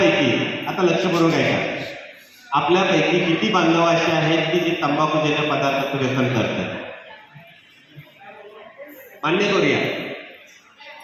आता लक्षपूर्वक ऐका, आपल्यापैकी किती बांधव असे आहेत की जे तंबाखूजन्य पदार्थाचं व्यसन करतात? मान्य करूया,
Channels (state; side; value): identical; both; correlation 1.00